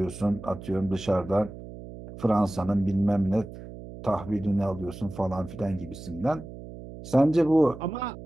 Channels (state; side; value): noise; right; hum, 14 dB below the sound